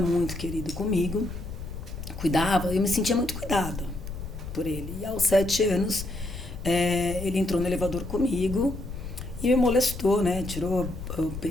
muito querido comigo, cuidava, eu me sentia muito cuidada por ele. E aos 7 anos, ele entrou no elevador comigo e me molestou, né? Tirou o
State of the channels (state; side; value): noise; left; rumble, 9 dB below the sound